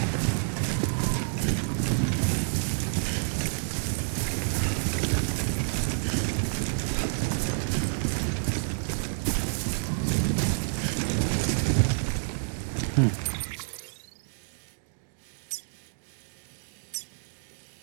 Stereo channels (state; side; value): silent; left; digital silence